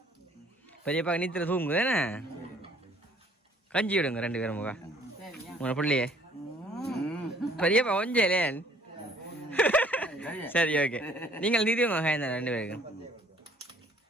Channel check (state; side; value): normal; both; correlation 0.58